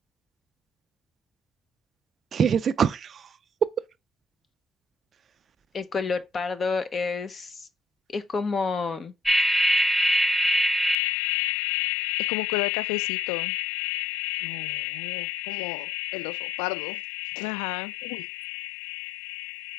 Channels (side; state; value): right; drops out; at 11.0 s